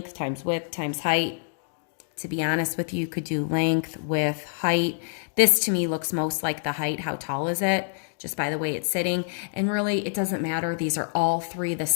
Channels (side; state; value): right; silent; digital silence